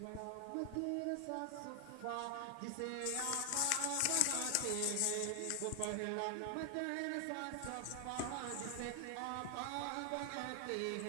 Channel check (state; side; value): different; both; correlation 0.00